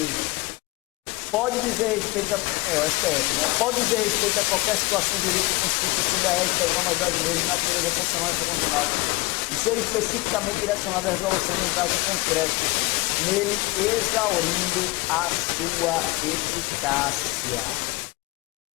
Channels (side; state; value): right; quieter; 23.4 dB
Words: Pode dizer respeito o STF, né? Pode dizer respeito a qualquer situação jurídica constituída sob a égide das normas brasileiras de natureza constitucional e infraconstitucional e ser especificamente direcionada à resolução de um caso concreto, nele exaurindo a sua eficácia.